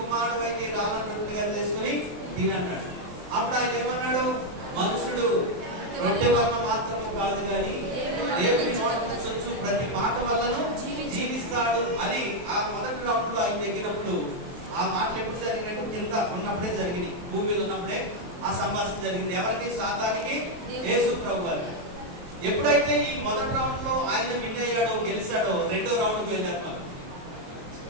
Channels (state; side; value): late; left; 23 ms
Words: కుమారుడు అయితే ఈ రాళ్లను రొట్టెలుగా చేసుకుని తినన్నాడు. అప్పుడు ఆయన ఏమన్నాడు? మనుషుడు రొట్టె వల్ల మాత్రము కాదు కానీ దేవుని నోట నుంచి ప్రతి మాట వల్లను జీవిస్తాడు అని ఆ మొదటి రౌండ్ లో ఆయన దగ్గినప్పుడు ఆ మాటలు ఎప్పుడు జరిగినట్టు కింద ఉన్నప్పుడే జరిగింది, భూమి మీద ఉన్నప్పుడే ఆ సంభాషణ జరిగింది. ఎవరికి? సాతానికి, యేసు ప్రభు వారికి. ఎప్పుడైతే ఈ మొదటి రౌండ్ లో ఆయన విన్ అయ్యాడో, గెలిచాడో, రెండో రౌండ్ కి వెళ్ళారు. మనం